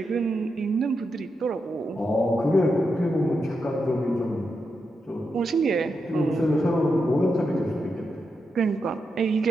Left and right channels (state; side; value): normal; both; correlation 0.86